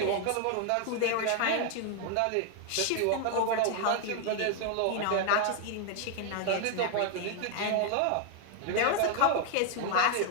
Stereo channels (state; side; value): different; both; correlation 0.00